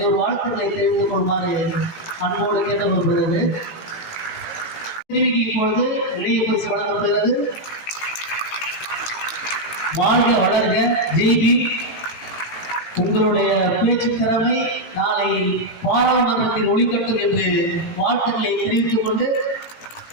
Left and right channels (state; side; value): late; right; 17 ms